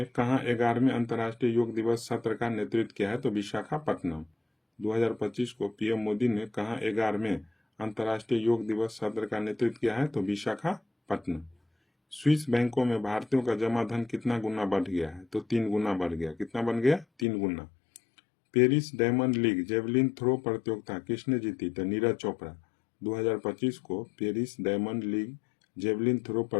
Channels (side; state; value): right; drops out; at 17.2 s